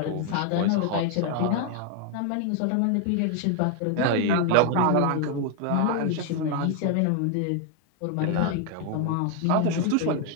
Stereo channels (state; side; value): different; both; correlation 0.01